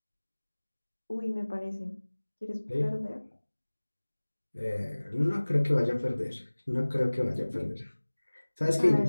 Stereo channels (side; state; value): both; inverted; correlation -1.00